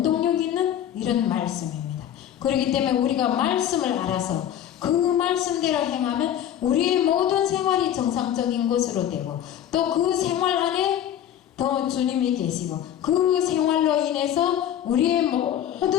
있는 이런 말씀입니다. 그렇기 때문에 우리가 말씀을 알아서 그 말씀대로 행하면 우리의 모든 생활이 정상적인 것으로 되고, 또 그 생활 안에 더 주님이 계시고 그 생활로 인해서 우리의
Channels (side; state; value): right; quieter; 10.6 dB